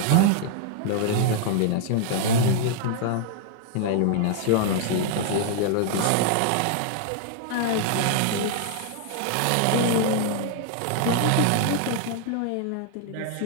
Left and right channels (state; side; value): different; both; correlation 0.00